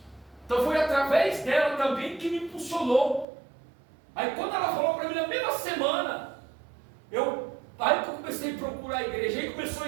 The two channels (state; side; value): drops out; left; at 3.2 s